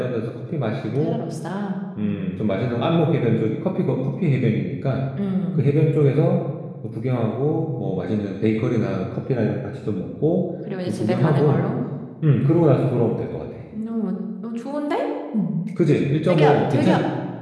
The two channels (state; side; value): identical; both; correlation 1.00